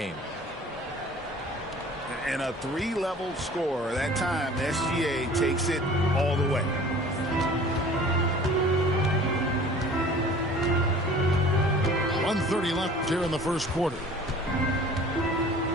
And a 3-level score. That time, SGA takes it all the way. .130 left here in the first quarter.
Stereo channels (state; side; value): normal; both; correlation 0.46